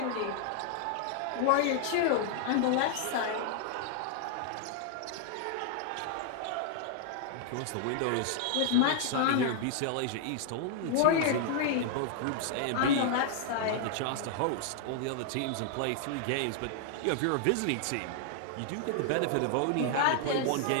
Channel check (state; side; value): different; both; correlation 0.00